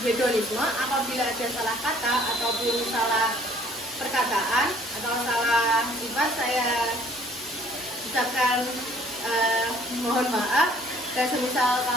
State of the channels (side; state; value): both; normal; correlation 0.57